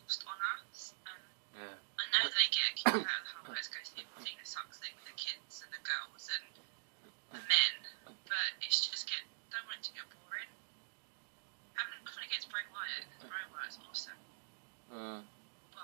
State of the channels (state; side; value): silent; left; digital silence